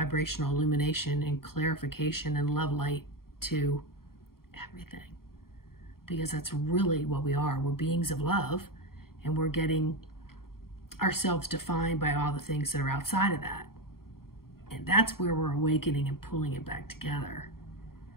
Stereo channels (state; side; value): late; right; 0.93 ms